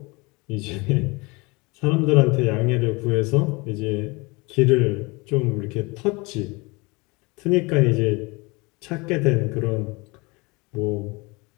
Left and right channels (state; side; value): quieter; right; 26.1 dB